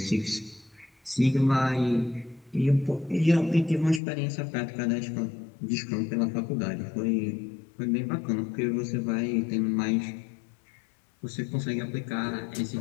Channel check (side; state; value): right; drops out; at 4.0 s